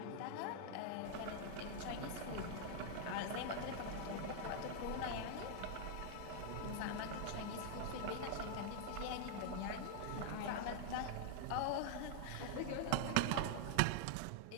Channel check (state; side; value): different; both; correlation 0.00